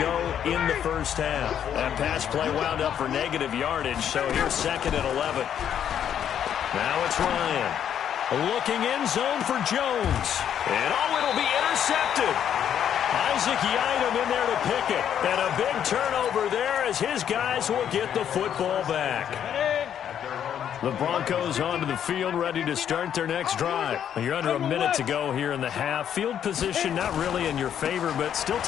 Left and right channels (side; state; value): right; quieter; 9.3 dB